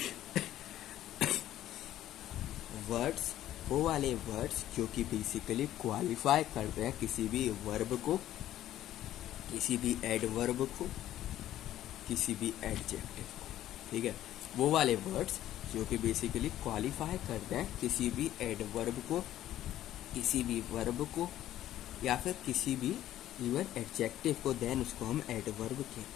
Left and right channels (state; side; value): quieter; right; 12.9 dB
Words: वर्ड्स जो कि बेसिकली क्वालिफाई करते हैं किसी भी वर्ब को, किसी भी एडवर्ब को, किसी भी एडजेक्टिव को। ठीक है, वो वाले वर्ड्स जो कि बेसिकली क्वालिफाई करते हैं किसी भी एडवर्ब को, किसी भी वर्ब को या फिर किसी भी इवन एडजेक्टिव को, देन उसको हम एडवर्ब